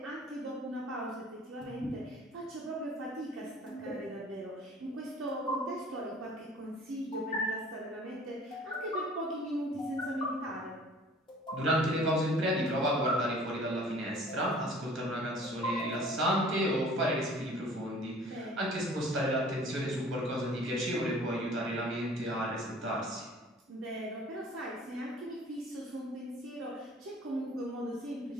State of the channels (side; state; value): both; normal; correlation 0.50